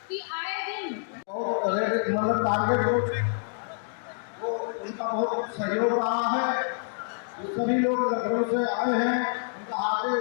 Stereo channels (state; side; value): silent; right; digital silence